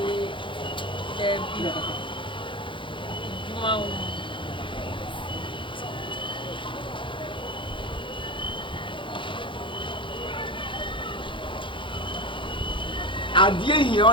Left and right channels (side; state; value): right; late; 0.24 ms